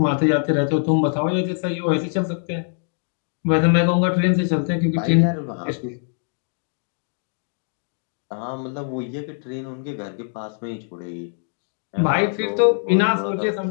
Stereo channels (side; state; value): right; silent; digital silence